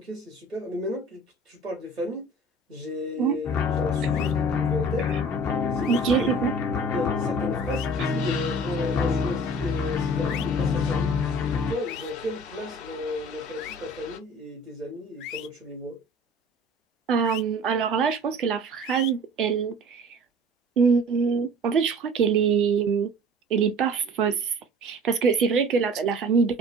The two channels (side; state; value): both; normal; correlation 0.45